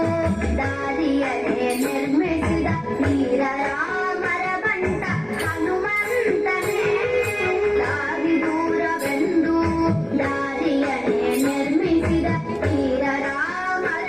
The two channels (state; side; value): noise; left; rumble, 29 dB below the sound